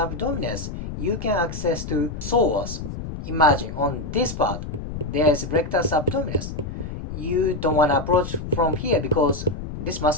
you can access to psoas. Imagine on this part, there's rectus abdominis. You don't want to approach from here because this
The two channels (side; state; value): left; noise; rumble, 8 dB below the sound